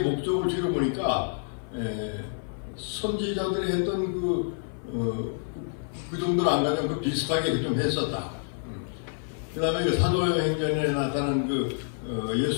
줄여보니까 선지자들이 했던 그 정도는 안 가지고 그 비슷하게 좀 했었다. 그 다음에 그 사도행전에 나타난 그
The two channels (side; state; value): right; silent; 56 dB below the other